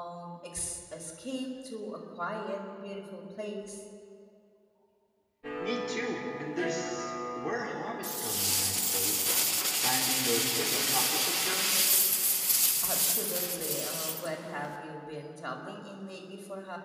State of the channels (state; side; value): identical; both; correlation 1.00